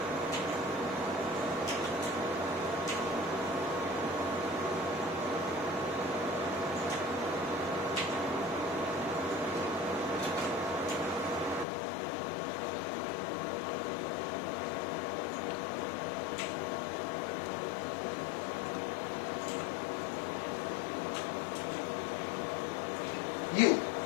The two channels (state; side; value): drops out; right; at 11.7 s